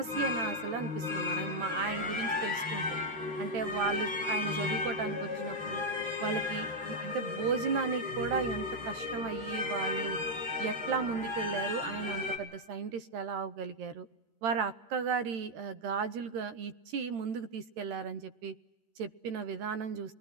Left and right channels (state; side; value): late; left; 13 ms